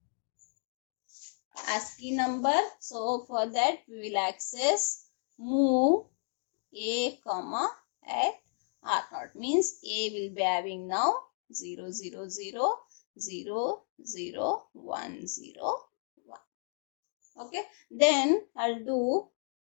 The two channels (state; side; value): silent; right; 56 dB below the other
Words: ASCII number. So for that we will access move A comma at R0, means A will be having now 0 0 0 0 0 1 0 1. Okay, then I'll do